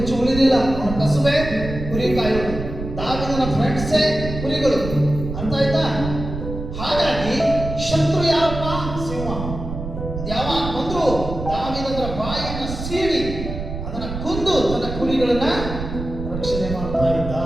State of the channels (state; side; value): noise; right; rumble, 7 dB below the sound